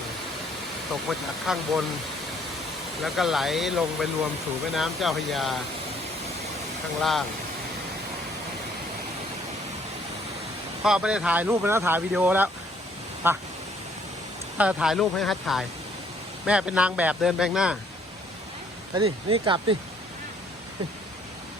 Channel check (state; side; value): normal; both; correlation 0.64